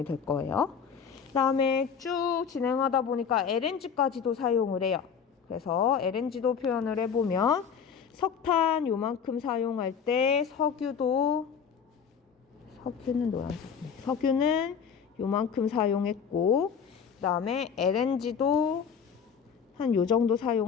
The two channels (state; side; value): quieter; right; 6.9 dB